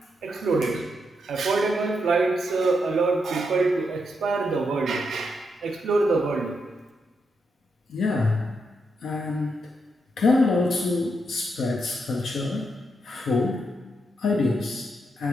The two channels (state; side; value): normal; both; correlation 0.82